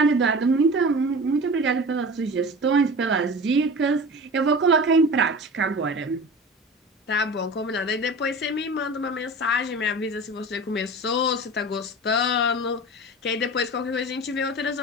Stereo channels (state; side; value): normal; both; correlation 0.35